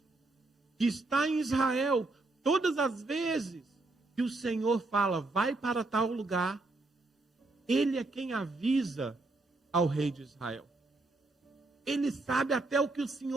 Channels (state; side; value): quieter; left; 3.2 dB